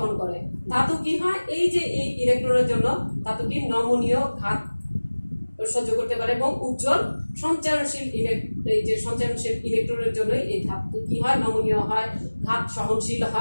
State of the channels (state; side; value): inverted; both; correlation -1.00